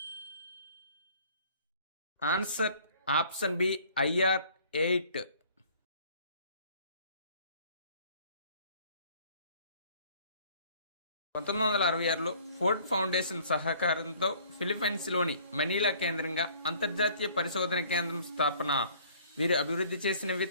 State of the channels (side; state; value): both; inverted; correlation -0.55